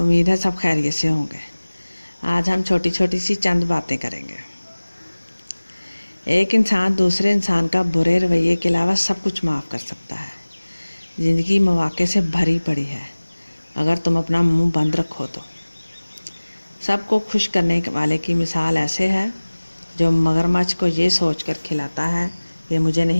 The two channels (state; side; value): inverted; both; correlation -1.00